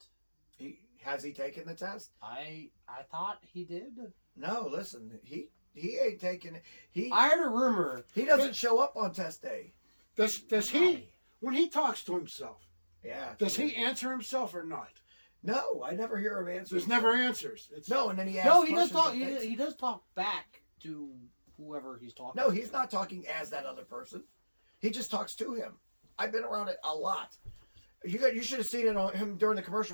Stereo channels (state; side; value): inverted; both; correlation -1.00